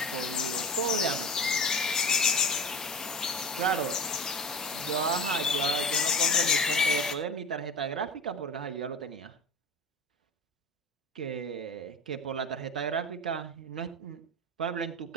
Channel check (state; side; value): normal; both; correlation 0.33